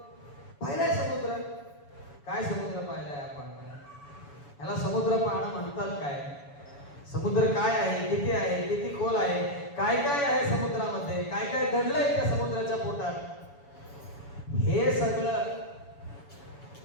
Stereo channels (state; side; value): late; right; 7.0 ms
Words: पाहिलाय समुद्र. काय समुद्र पाहिलाय आपण? याला समुद्र पाहणं म्हणतात काय? समुद्र काय आहे, किती खोल आहे, काय काय आहे समुद्रामध्ये, काय काय दडलंय त्या समुद्राच्या पोटात, हे सगळं